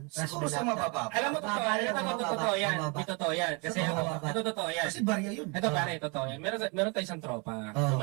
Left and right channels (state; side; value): quieter; left; 31.7 dB